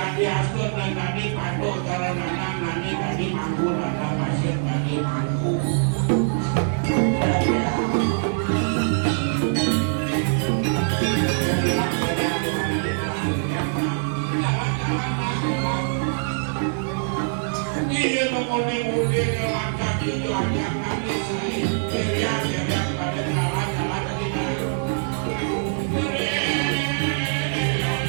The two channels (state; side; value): silent; left; 63 dB below the other